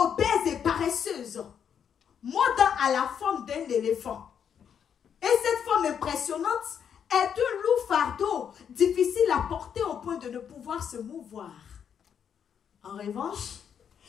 et paresseuse. Maud à la forme d'un éléphant. Et cette forme impressionnante est un lourd fardeau, difficile à porter au point de ne pouvoir se mouvoir. En revanche,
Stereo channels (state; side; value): quieter; right; 8.0 dB